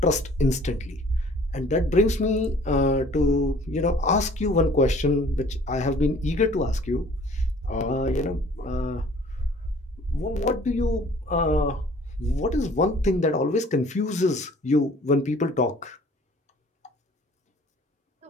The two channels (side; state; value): both; normal; correlation 0.53